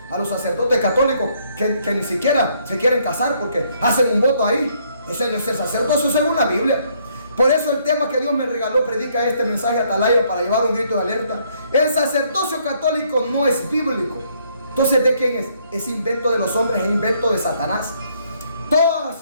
a los sacerdotes católicos que ni siquiera se quieren casar porque hacen un voto ahí. Ese no es el sacerdocio según la Biblia. Por eso el tema que Dios me regaló predica este mensaje a Atalaya para llevar un grito de alerta. El sacerdocio católico no es bíblico. Entonces, ¿de quién es? Es invento de los hombres, es invento de Satanás. Todas,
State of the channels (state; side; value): inverted; both; correlation -0.68